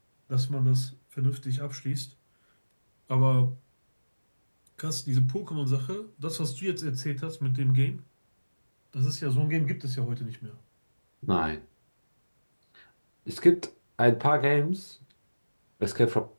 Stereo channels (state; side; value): inverted; both; correlation -1.00